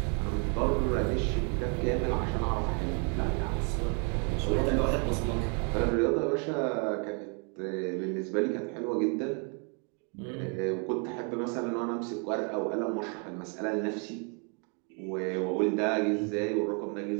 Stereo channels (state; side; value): quieter; left; 37.7 dB